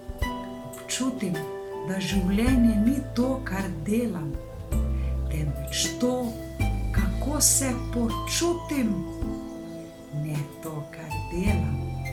Občutim, da življenje ni to, kar delam, temveč to, kako se počutim. Ne to, kar delam,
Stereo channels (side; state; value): both; identical; correlation 1.00